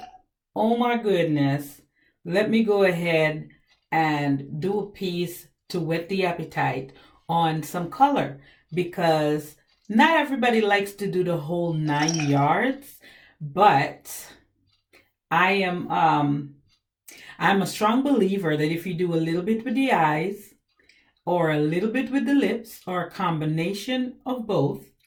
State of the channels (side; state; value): both; identical; correlation 1.00